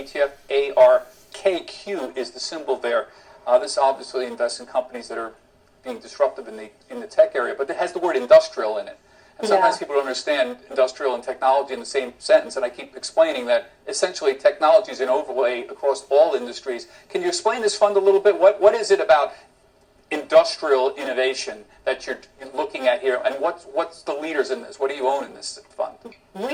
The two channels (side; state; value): both; identical; correlation 1.00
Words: ARKQ is the symbol there. This obviously invests in companies that are being disruptive in the tech area, but it has the word industrial in it. And sometimes people don't understand industrial and technology in the same sentence, and I keep explaining that essentially technology is an overlay across all industries. Can you explain this fund a little bit? What is it about industrial innovation that you're looking at here, and what's the leaders in this? What do you own in this fund?